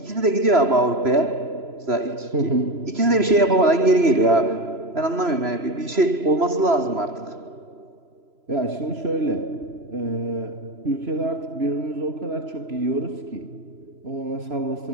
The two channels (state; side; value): late; left; 3.0 ms